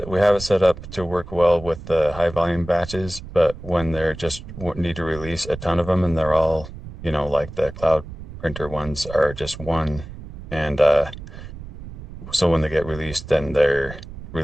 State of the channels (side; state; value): right; noise; rumble, 13 dB below the sound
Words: set up to work well with the high volume batches, but when they're just need to release a ton of them, and they're all, like the cloud printer ones are just one, and so when they get released, then they're